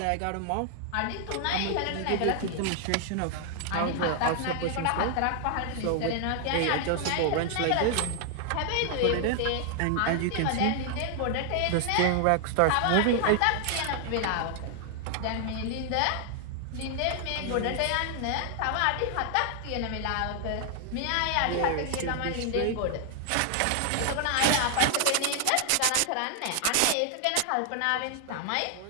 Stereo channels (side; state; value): both; different; correlation 0.00